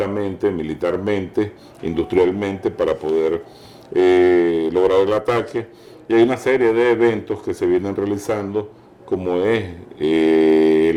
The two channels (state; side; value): identical; both; correlation 1.00